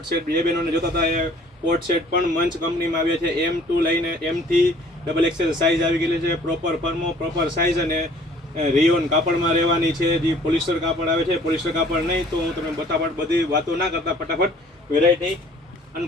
સેટ બે બહેનોને જોતા હતા, એ કોડ સેટ પણ મંચ કંપનીમાં આવ્યા છે. M2 લઈને M થી XXL સાઇઝ આવી ગયેલી છે. પ્રોપર ફર્મો, પ્રોપર સાઇઝ અને રિયોન કાપડમાં રહેવાની છે. જે પોલિસ્ટર કાપડ આવે છે, પોલિસ્ટર કાપડ નહીં. તો હું તમે બધી વાતો ના કરતા ફટાફટ વેરાયટી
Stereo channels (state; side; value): normal; both; correlation 0.54